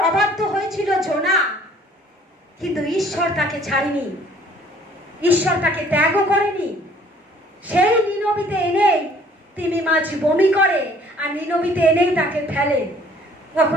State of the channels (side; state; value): both; normal; correlation 0.57